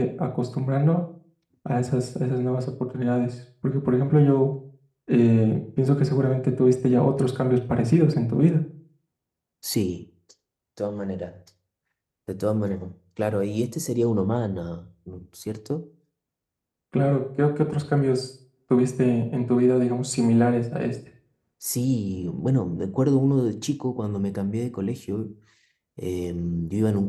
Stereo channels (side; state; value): both; identical; correlation 1.00